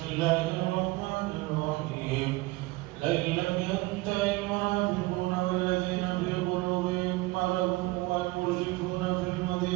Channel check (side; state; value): left; quieter; 21.8 dB